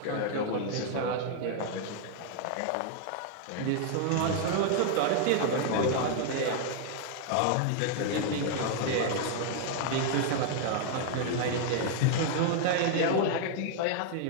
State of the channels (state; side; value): different; both; correlation 0.00